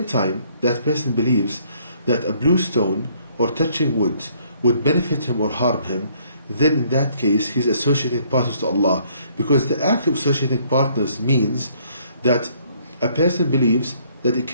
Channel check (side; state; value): both; inverted; correlation -0.64